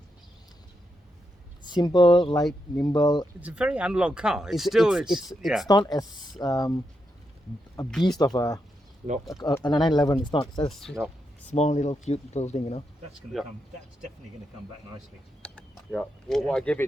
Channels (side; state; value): both; normal; correlation 0.84